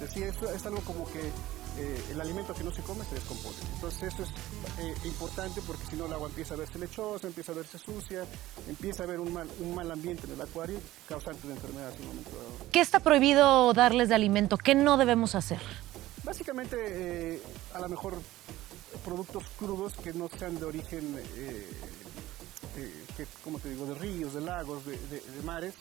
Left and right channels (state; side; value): quieter; left; 16.1 dB